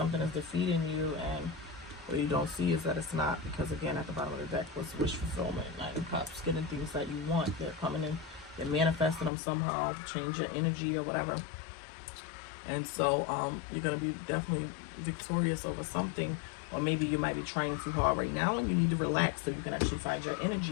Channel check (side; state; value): right; drops out; at 9.3 s